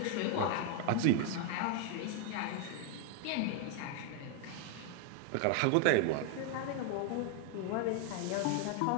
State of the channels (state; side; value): different; both; correlation 0.00